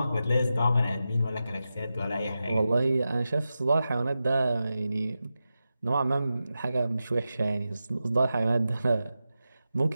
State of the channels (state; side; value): inverted; both; correlation -0.91